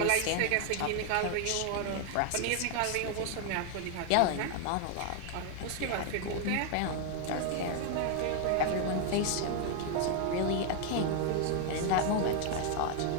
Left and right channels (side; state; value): both; different; correlation 0.00